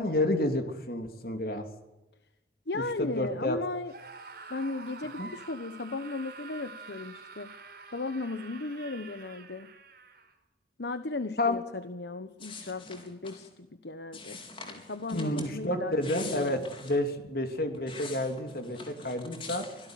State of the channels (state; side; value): normal; both; correlation 0.23